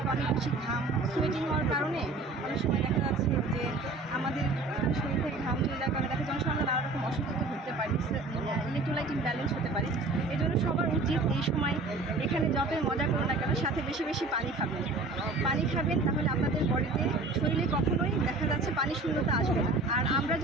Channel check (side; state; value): left; quieter; 3.2 dB